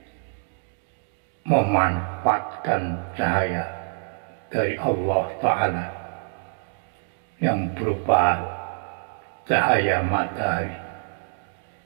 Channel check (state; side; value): silent; left; 59 dB below the other